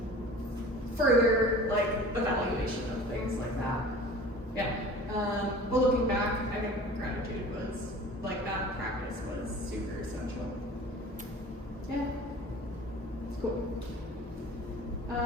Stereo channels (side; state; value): both; normal; correlation 0.42